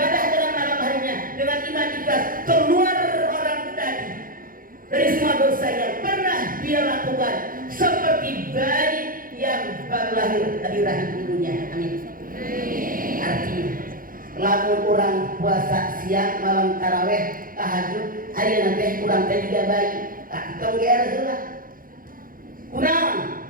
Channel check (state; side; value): late; left; 0.41 ms